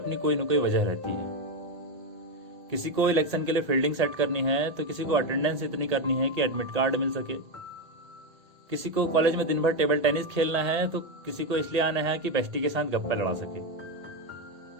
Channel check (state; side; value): late; left; 1.8 ms